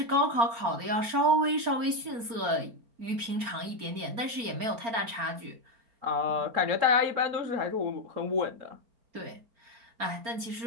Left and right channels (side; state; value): left; late; 4.3 ms